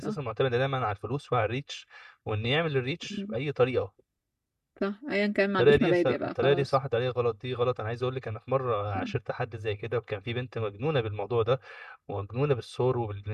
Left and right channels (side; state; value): both; identical; correlation 1.00